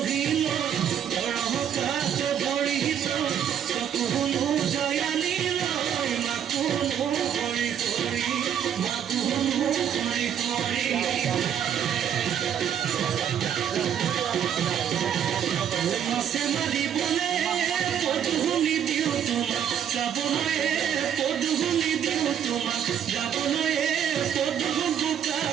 বড়হতার তো বড়িত চকুনো জয়ালি লয় মাকুনো হৰি হৰি মাকুনো হৰি হৰি মাছে মাৰিবলে পদুলি দিওঁ তোমাক যাবলৈ পদুলি দিওঁ তোমাক যাবলৈ পদু বোকা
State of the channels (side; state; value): left; quieter; 9.0 dB